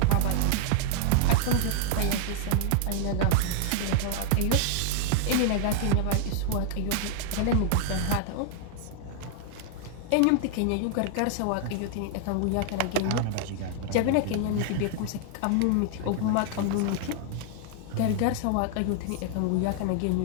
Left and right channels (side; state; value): both; different; correlation 0.00